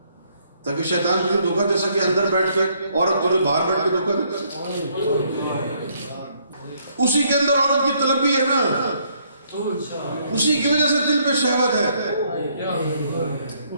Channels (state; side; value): inverted; both; correlation -0.69